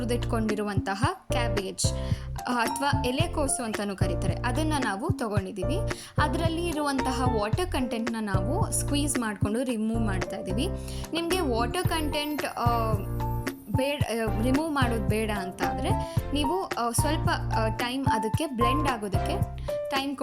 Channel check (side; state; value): both; identical; correlation 1.00